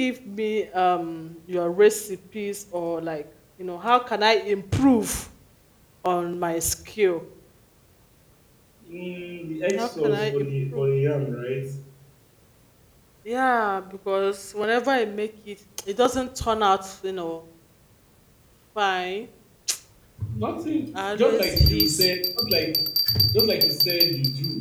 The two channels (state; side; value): identical; both; correlation 1.00